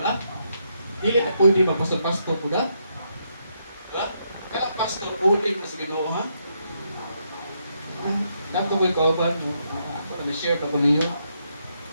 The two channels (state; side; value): inverted; both; correlation -0.78